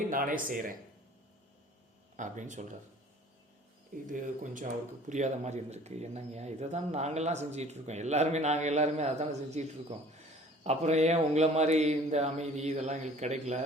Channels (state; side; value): normal; both; correlation 0.50